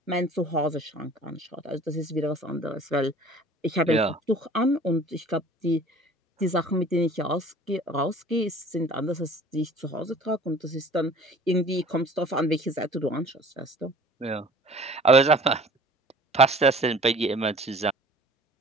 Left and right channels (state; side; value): normal; both; correlation 0.47